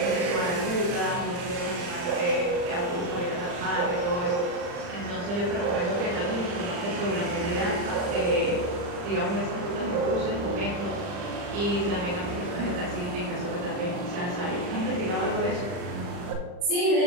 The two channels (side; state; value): left; late; 40 ms